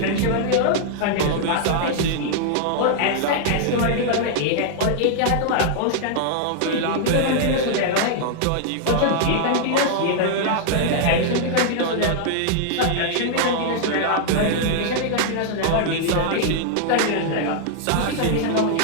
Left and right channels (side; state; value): both; different; correlation -0.01